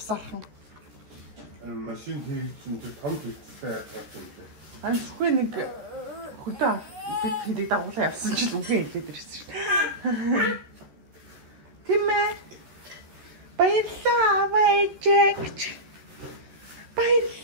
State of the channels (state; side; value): late; left; 14 ms